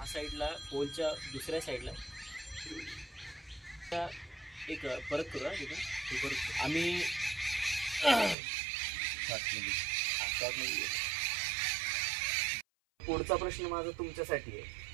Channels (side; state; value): left; drops out; at 8.3 s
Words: साईडला, पोलच्या दुसऱ्या साईडला एक परत करू आम्ही पुढचा प्रश्न माझा तुमच्यासाठी आहे